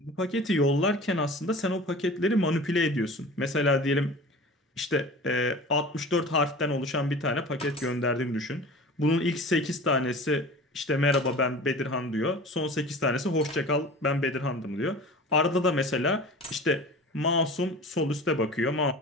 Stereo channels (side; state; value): both; normal; correlation 0.38